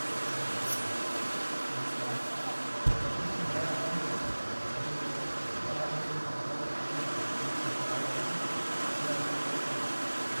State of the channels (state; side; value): inverted; both; correlation -1.00